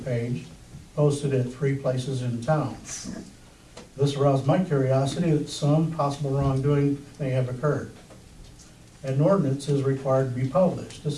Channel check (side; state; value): both; identical; correlation 1.00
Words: posted at 3 places in town. This aroused my curiosity that some possible wrongdoing may have occurred. An ordinance is required to be published.